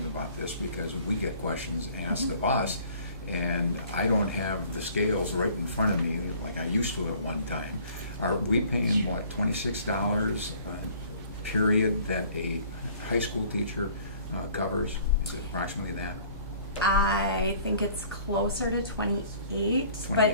about this, because we get questions asked of us, and I don't have the scales right in front of me like I used to at one time. Are we paying, what, $26 a period that a high school teacher covers? Is it approximately that? I think it's closer to 28,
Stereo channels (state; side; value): inverted; both; correlation -0.53